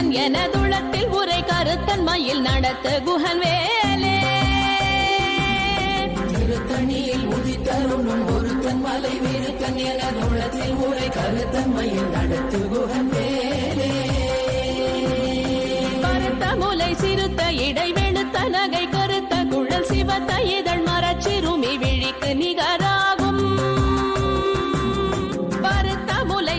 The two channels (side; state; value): both; identical; correlation 1.00